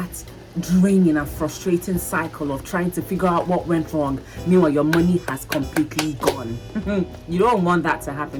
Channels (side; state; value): both; identical; correlation 1.00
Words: draining and frustrating cycle of trying to figure out what went wrong. Meanwhile, your money has completely gone. You don't want that to